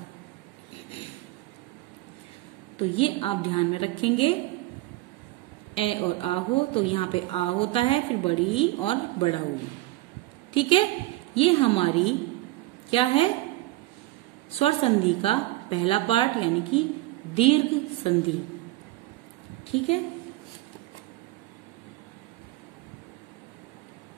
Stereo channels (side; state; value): left; quieter; 18.2 dB